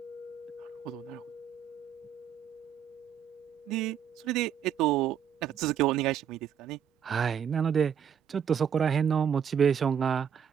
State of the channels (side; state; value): left; quieter; 8.3 dB